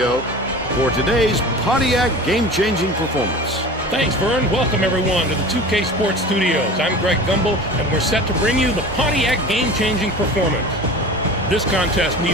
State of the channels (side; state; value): both; normal; correlation 0.37